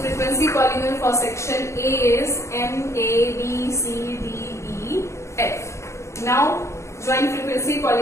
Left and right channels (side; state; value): right; late; 0.14 ms